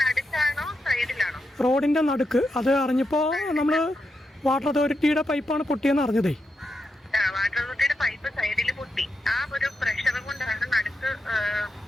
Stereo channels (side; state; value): both; normal; correlation 0.86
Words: റോഡിൻ്റെ നടുക്ക്. അത് അറിഞ്ഞപ്പോൾ നമ്മൾ വാട്ടർ അതോറിറ്റിയുടെ പൈപ്പാണ് പൊട്ടിയെന്ന് അറിഞ്ഞതേ. വാട്ടർ അതോറിറ്റിയുടെ പൈപ്പ് സൈഡിൽ പൊട്ടി. ആ ഒരു പ്രഷർ കൊണ്ടാണ് നടുക്ക്